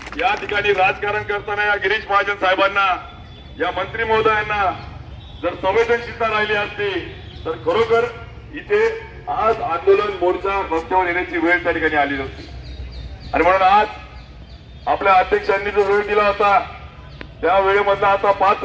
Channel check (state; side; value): identical; both; correlation 1.00